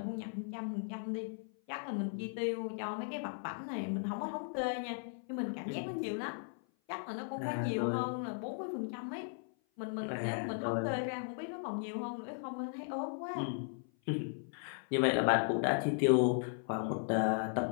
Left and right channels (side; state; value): right; silent; 53 dB below the other